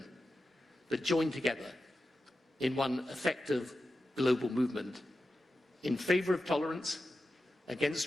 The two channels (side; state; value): both; normal; correlation 0.92